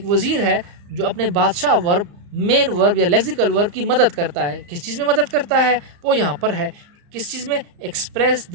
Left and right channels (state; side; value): late; left; 34 ms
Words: वज़ीर है जो अपने बादशाह वर्ब, मेन वर्ब या लेक्सिकल वर्ब की मदद करता है. किस चीज़ में मदद करता है? वो यहाँ पर है. किस चीज़ में? Express